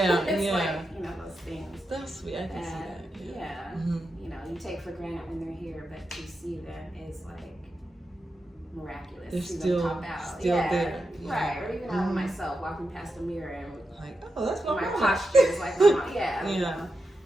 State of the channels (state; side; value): normal; both; correlation 0.88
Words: it's yeah. like, you know, those things. That's sweet. I can see that. Yeah. You know, you take for granted when they're here, but to see them is like miraculous. They're see still, them pop out. still there. Right. Or even I myself walking past the mirror and like, oh, that's what my my posture is like. My mom. Yeah. Yeah. You know?